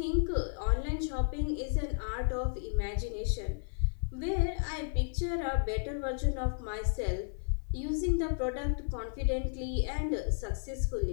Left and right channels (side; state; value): right; silent; 55 dB below the other